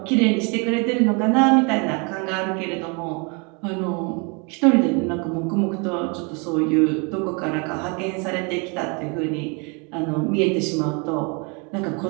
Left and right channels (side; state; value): left; quieter; 32.7 dB